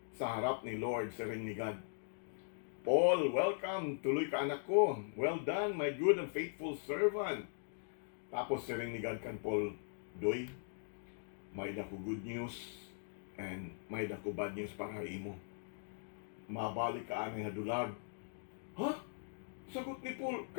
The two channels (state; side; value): silent; right; digital silence